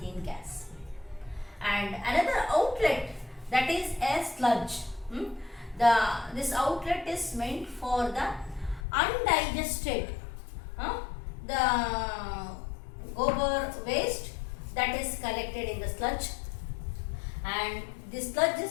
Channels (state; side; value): drops out; right; at 8.8 s